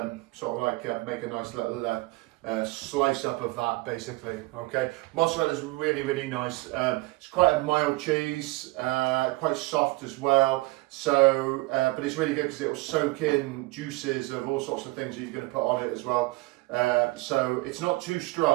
of like make a nice little slice up of that basically. Okay, mozzarella is really nice. It's quite a mild cheese, quite soft as well, so but it's really good because it will soak in juices of all sorts of things that you're going to put on it as well. So it's not too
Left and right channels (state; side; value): quieter; left; 22.4 dB